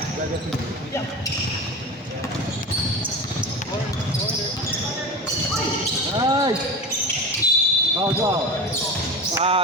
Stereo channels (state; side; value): normal; both; correlation 0.28